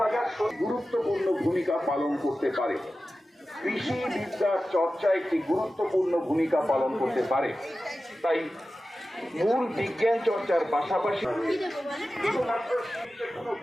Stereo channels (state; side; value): normal; both; correlation 0.94